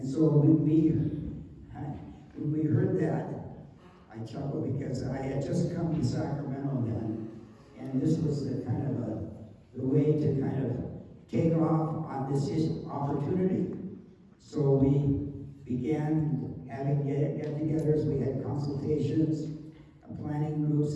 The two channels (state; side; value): identical; both; correlation 1.00